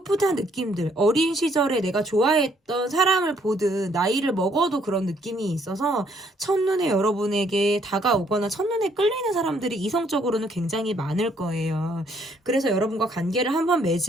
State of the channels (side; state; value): both; normal; correlation 0.67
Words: 느낌들, 어린 시절에 내가 좋아했던 사람을 보듯 나이를 먹어도 그런 느낌이 있어서 첫눈에 여러분에게 다가오거나 첫눈에 끌리는 사람들이 이성적으로는 굉장히 많을 거예요. 그래서 여러분과 관계를 한번